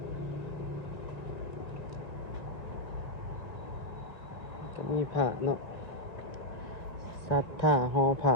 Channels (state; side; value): late; right; 1.9 ms